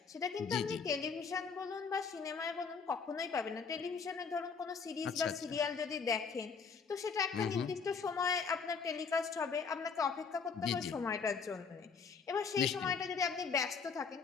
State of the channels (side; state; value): right; quieter; 5.5 dB